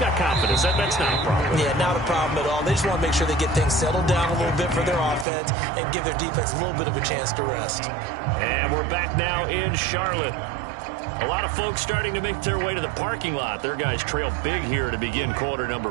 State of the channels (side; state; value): left; drops out; at 5.2 s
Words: got confidence. That's not a problem. Yeah, not a problem at all. They just want to make sure they get things settled down a little bit for their offense and give their defense a little bit of a chance to rest. And we're back now in Charlotte. A lot of folks starting to make their way to the parking lot. Their guys trail big here to begin quarter